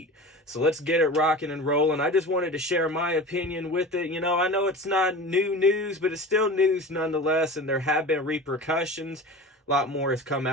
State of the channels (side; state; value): both; normal; correlation 0.34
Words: So let's get it rocking and rolling. I just wanted to share my opinion with it. I know it's not new news, but it's still news nonetheless, and there have been repercussions. A lot more has come